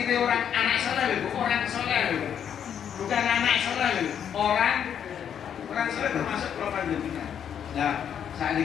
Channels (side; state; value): right; quieter; 8.6 dB